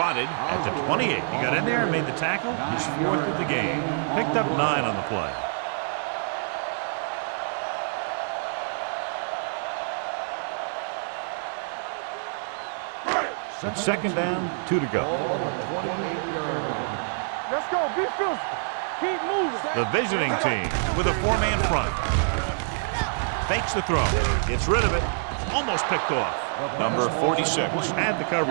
at the 28. He got in there and made the tackle. He's fourth of the game. Picked up 9 on the play. It's second down, 2 to go. Let's go. Be physical. Keep moving. The visiting team with a 4-man front. Fakes the throw. Gets rid of it. Almost picked off. Number 46 had the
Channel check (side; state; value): left; silent; digital silence